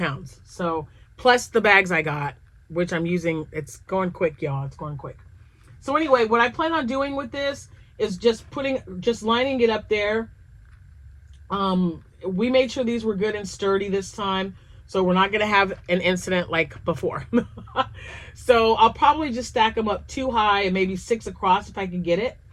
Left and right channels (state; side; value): identical; both; correlation 1.00